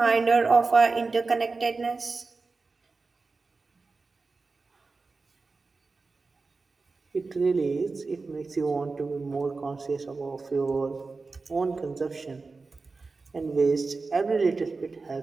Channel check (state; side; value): quieter; left; 4.0 dB